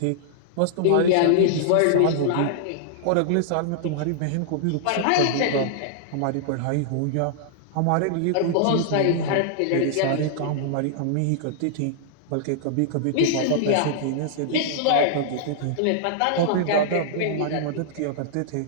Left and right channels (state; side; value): different; both; correlation -0.01